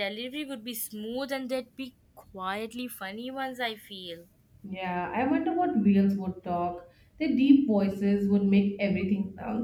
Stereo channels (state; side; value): identical; both; correlation 1.00